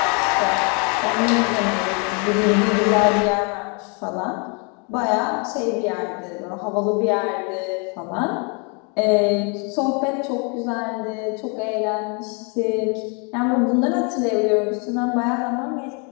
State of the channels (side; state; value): right; quieter; 34.8 dB